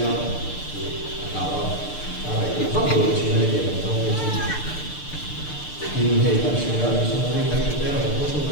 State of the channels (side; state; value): right; late; 6.7 ms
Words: nào nào này cũng phát biểu chuyện này để làm trong cái chuyện nhưng hệ các sự ra thì sau này các cái là có số